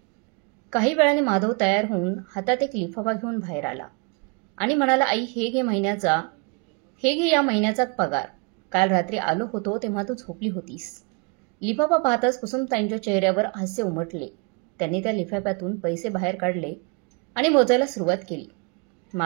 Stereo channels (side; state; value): left; quieter; 31.4 dB